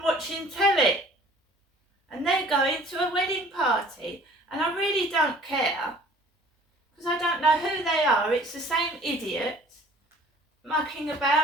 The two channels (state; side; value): normal; both; correlation 0.52